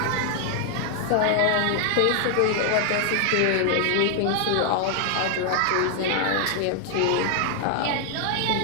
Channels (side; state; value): both; different; correlation 0.00